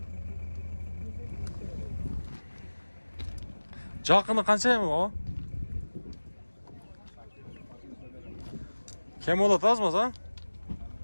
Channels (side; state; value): both; inverted; correlation -1.00